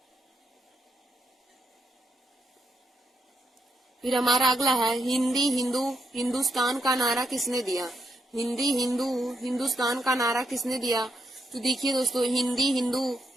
फिर हमारा अगला है हिंदी हिंदू हिंदुस्तान का नारा किसने दिया? हिंदी हिंदू हिंदुस्तान का नारा किसने दिया? तो देखिए दोस्तों, हिंदी हिंदू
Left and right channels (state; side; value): normal; both; correlation 0.81